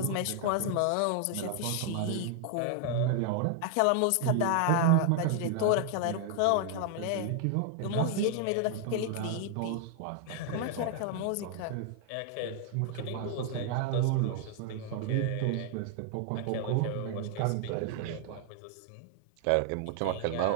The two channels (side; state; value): both; different; correlation 0.00